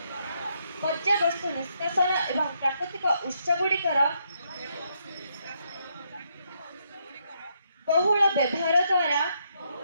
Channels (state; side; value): inverted; both; correlation -0.76